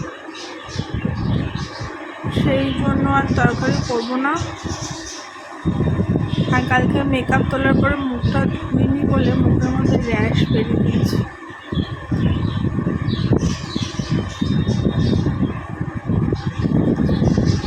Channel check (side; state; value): both; identical; correlation 1.00